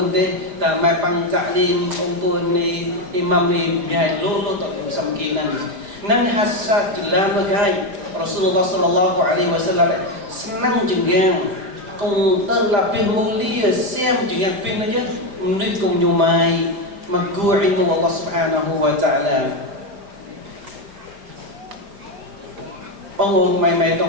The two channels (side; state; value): left; late; 4.9 ms